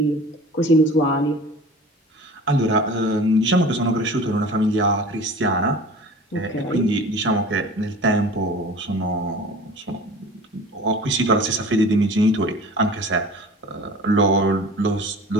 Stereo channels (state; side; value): normal; both; correlation 0.41